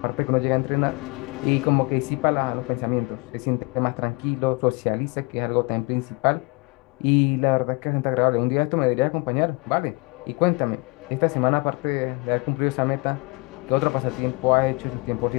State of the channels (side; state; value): right; quieter; 28.2 dB